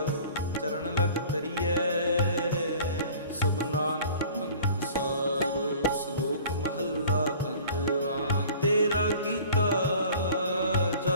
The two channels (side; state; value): both; inverted; correlation -0.46